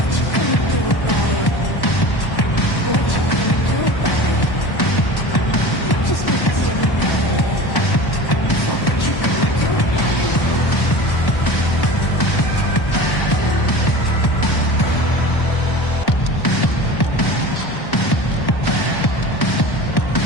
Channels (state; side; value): late; right; 1.1 ms